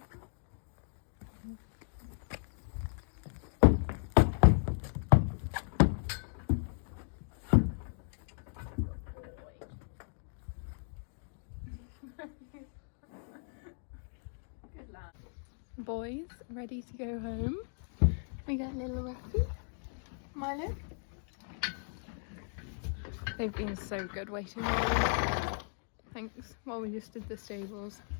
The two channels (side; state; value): right; silent; 54 dB below the other